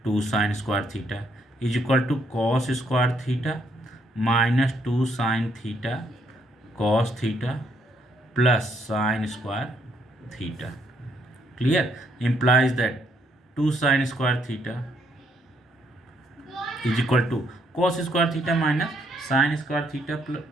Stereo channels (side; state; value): both; normal; correlation 0.72